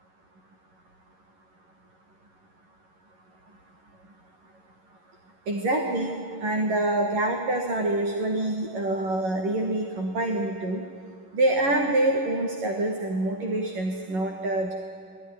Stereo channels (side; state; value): left; late; 11 ms